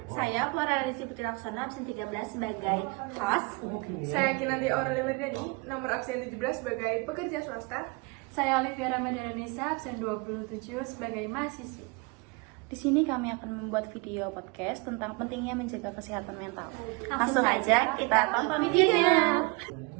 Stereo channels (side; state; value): left; quieter; 27.8 dB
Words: Saya Flora Radisi Putri Laksana, absen 13 sebagai host. Saya Kinanti Aurelia Merdani, nomor absen 17 sebagai pekerja swasta. Saya Olivia Ramadhanisa, absen 27 sebagai mahasiswi. Di sini kami akan membuat video podcast tentang pentingnya menjaga kesehatan mental. Langsung saja kita tonton videonya.